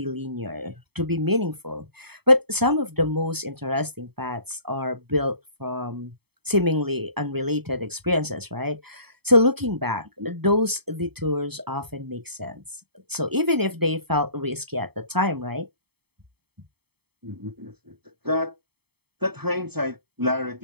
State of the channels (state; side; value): late; left; 0.97 ms